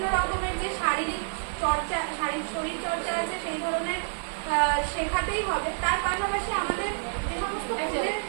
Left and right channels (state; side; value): silent; left; digital silence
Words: রকমের যে শরীর চর্চা আছে সেই ধরনের শেখাতেই হবে। তার পাশাপাশি আমাদের যে সমস্ত